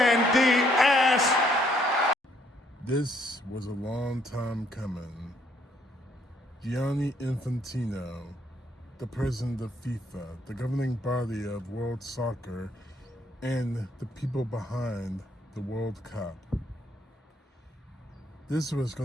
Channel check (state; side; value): normal; both; correlation 0.68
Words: ass. This was a long time coming. Gianni Infantino, the president of FIFA, the governing body of world soccer, and the people behind the World Cup. This was